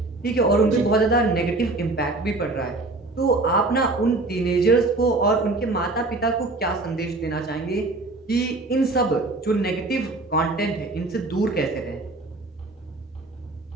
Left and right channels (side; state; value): left; quieter; 3.1 dB